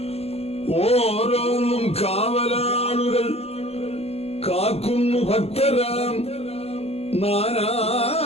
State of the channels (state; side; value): late; right; 0.29 ms